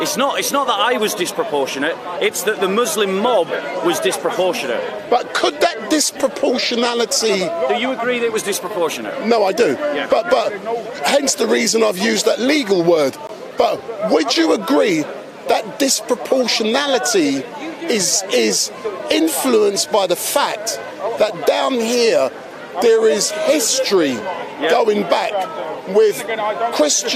It's not that I was disproportionate, it's that the Muslim mob was disproportionate. But could that disproportionality... Do you agree that it was disproportionate? No, I do. Yeah. But hence the reason I've used that legal word. But would you agree that disproportionality is influenced by the fact that down here there is history going back with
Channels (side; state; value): both; identical; correlation 1.00